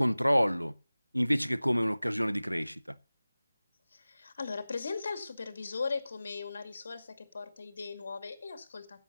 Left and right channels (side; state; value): both; inverted; correlation -0.98